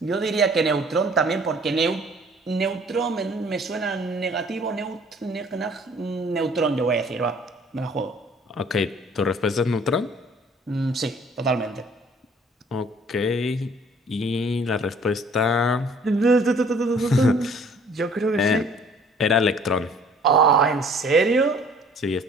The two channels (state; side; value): normal; both; correlation 0.55